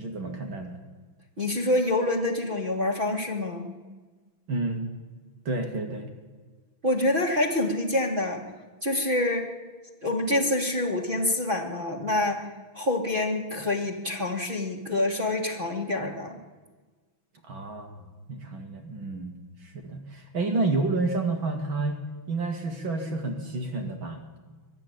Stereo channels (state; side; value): late; left; 6.1 ms